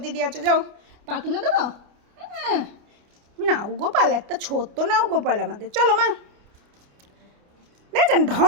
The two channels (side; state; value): left; late; 29 ms